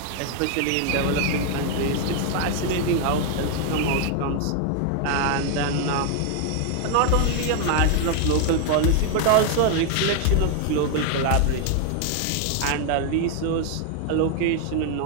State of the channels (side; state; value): both; different; correlation 0.00